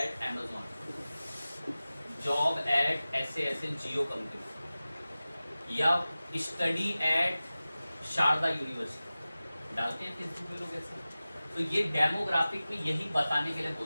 Amazon, job eight ऐसे ऐसे जियो कंपनी, या स्टडी एट शारदा यूनिवर्सिटी, डालते हैं फेसबुक में लोग ऐसे। तो ये डेमोग्राफिक में यही बताने के लिए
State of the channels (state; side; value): inverted; both; correlation -0.97